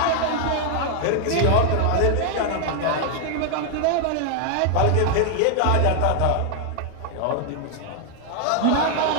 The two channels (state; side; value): different; both; correlation 0.00